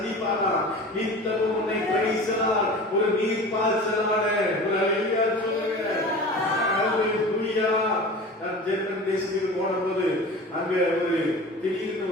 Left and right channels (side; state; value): both; normal; correlation 0.36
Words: நித்தமும் உன்னை பரிசலார் ஒரு நீர்ப்பாய்ச்சலான ஒரு அல்லேலூயா சொல்லுங்க. அல்லேலூயா. நான் ஜெர்மன் தேசத்துக்கு போனபோது அங்க ஒரு திடீர்னு